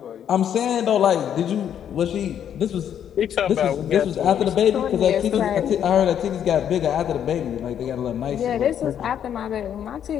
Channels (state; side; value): quieter; right; 9.3 dB